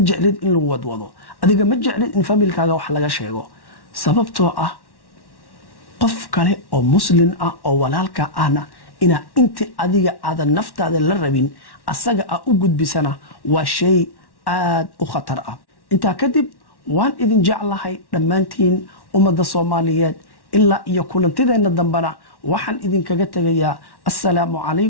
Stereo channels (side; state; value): right; late; 1.1 ms